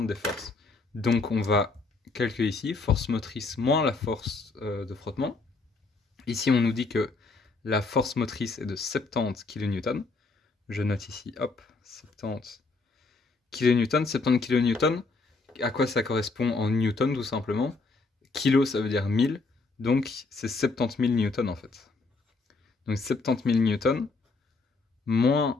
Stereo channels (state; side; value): quieter; right; 3.8 dB